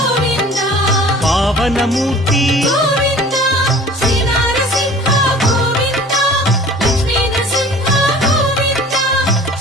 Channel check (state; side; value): normal; both; correlation 0.45